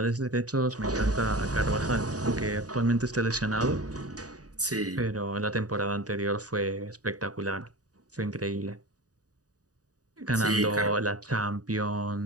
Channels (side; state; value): left; late; 0.67 ms